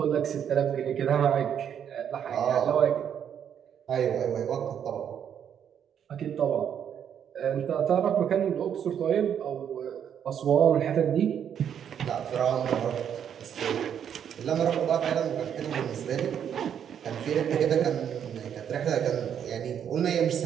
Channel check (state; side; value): quieter; left; 8.7 dB